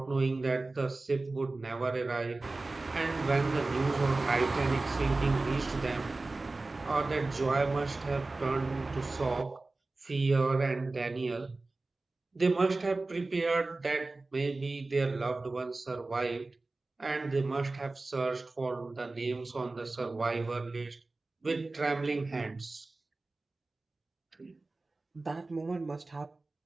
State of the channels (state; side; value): quieter; left; 3.3 dB